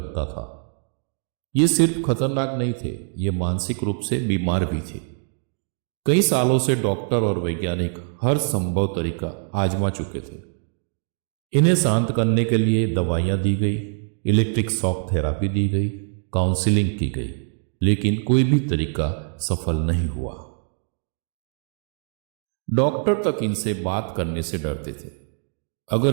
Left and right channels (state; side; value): silent; left; 63 dB below the other